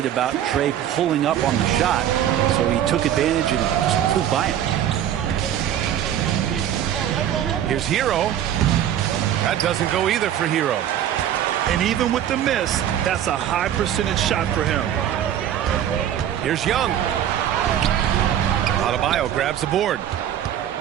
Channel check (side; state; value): left; quieter; 10.6 dB